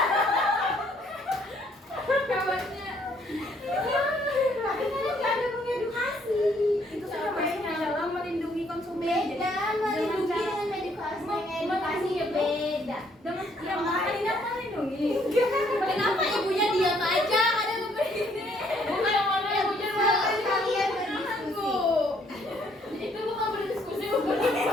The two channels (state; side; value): normal; both; correlation 0.66